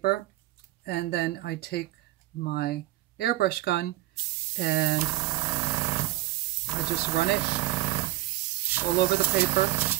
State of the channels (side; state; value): left; quieter; 16.7 dB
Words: And then I take my airbrush gun and I just run it all over the paper.